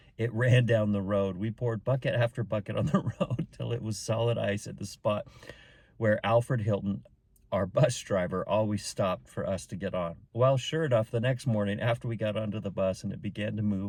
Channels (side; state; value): both; identical; correlation 1.00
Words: it ran down the road. We poured bucket after bucket on the road till it was solid ice at the spot where Alfred Hilton, our bus driver, always stopped for us to get on. Well, sure enough, the next morning after we got onto the bus and it began to